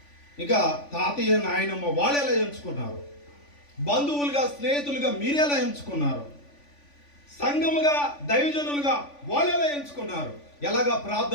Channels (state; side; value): late; right; 3.5 ms